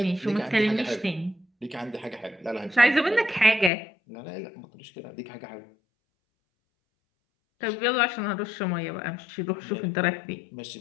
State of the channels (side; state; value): right; drops out; at 3.7 s